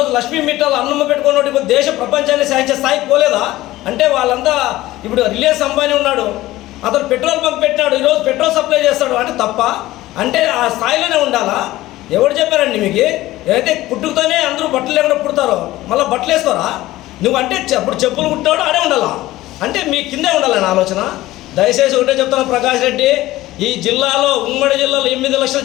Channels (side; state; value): right; quieter; 16.8 dB